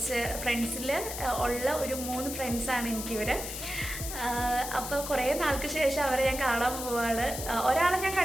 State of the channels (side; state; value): left; noise; hiss, 7 dB below the sound